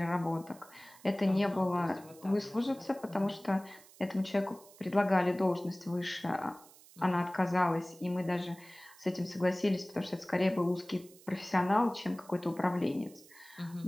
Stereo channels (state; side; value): noise; right; hiss, 23 dB below the sound